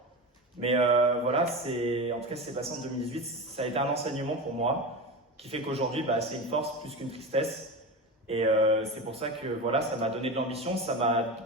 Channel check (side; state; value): both; normal; correlation 0.24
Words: Mais voilà, en tout cas, c'est passé en 2018. Ça a été un enseignement pour moi, qui fait qu'aujourd'hui, c'est une force plus qu'une tristesse. Et c'est pour ça que voilà, ça m'a donné de l'ambition, ça m'a